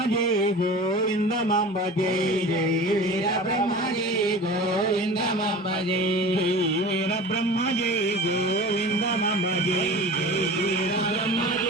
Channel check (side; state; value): both; normal; correlation 0.37